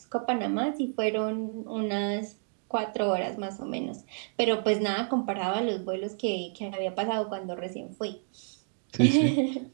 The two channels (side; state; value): left; silent; 58 dB below the other